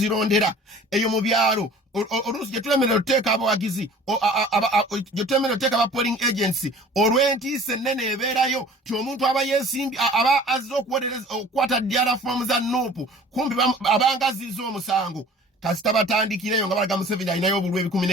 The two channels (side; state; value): both; normal; correlation 0.47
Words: Eyo mu byalo oluusi gye tulemerera otuteeka abawagizi gye tulemerera otuteeka aba polling agency olw'entiisa ennene ebeerayo ti omuntu aba yeesimbi aba azze okukwata diara fomu za nuupu kumpi abanga azizza omusango. Kasita batandikireyo nga balaga Museveni alinayo obululu